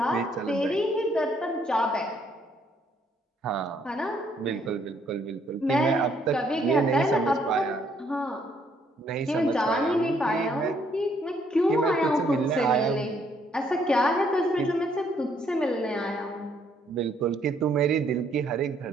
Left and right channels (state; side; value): normal; both; correlation 0.68